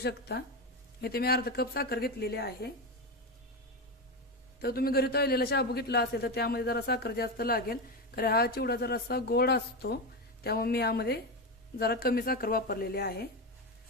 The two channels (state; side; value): normal; both; correlation 0.15